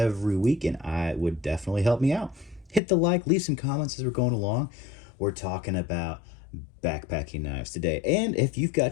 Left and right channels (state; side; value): drops out; right; at 2.8 s